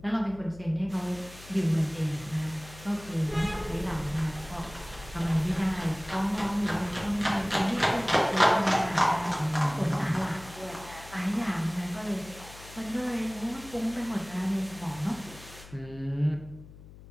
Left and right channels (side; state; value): left; noise; hum, 18 dB below the sound